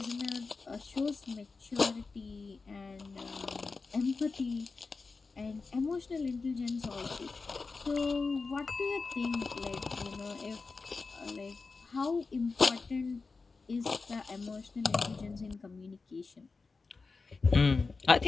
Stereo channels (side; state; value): right; quieter; 4.2 dB